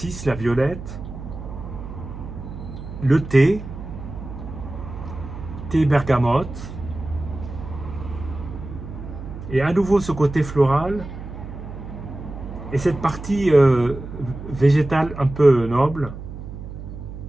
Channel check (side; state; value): right; noise; hum, 11 dB below the sound